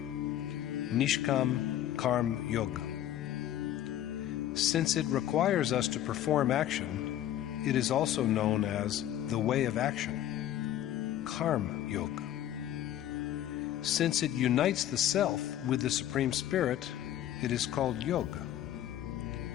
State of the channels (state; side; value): quieter; right; 11.9 dB